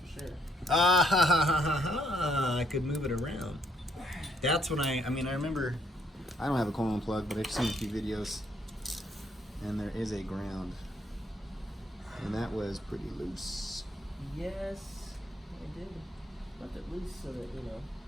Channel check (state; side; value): normal; both; correlation 0.69